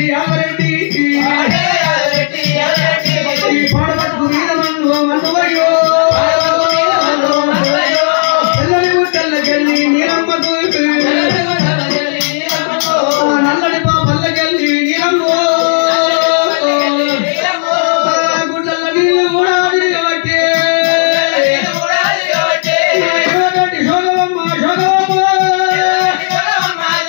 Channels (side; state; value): right; silent; digital silence